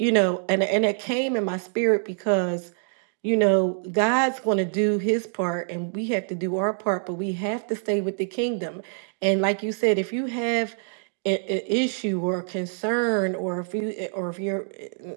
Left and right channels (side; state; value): left; silent; 61 dB below the other